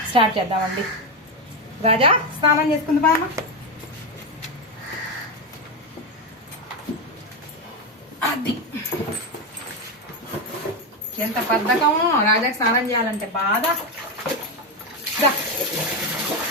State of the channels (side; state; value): both; normal; correlation 0.10